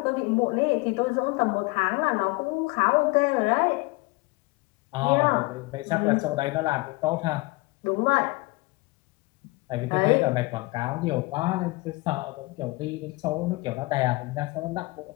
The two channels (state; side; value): quieter; right; 23.9 dB